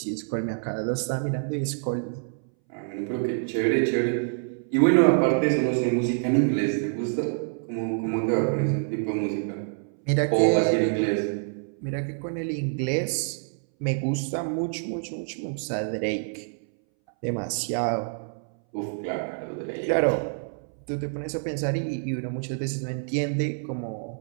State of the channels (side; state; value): left; silent; 60 dB below the other